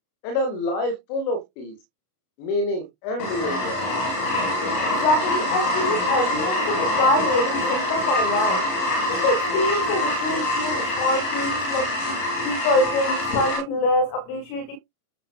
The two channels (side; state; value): right; late; 33 ms